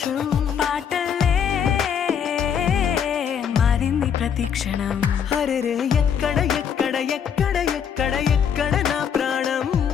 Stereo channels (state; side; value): quieter; right; 7.9 dB